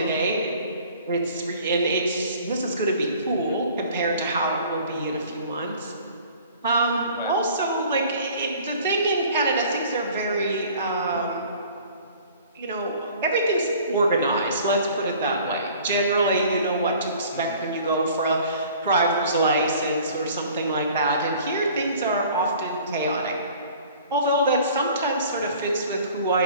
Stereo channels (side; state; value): both; inverted; correlation -0.50